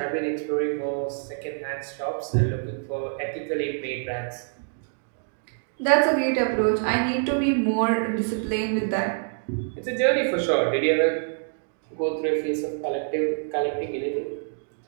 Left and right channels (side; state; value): left; silent; 61 dB below the other